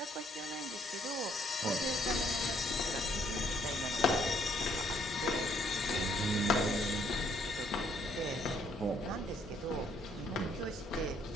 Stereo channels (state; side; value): normal; both; correlation 0.67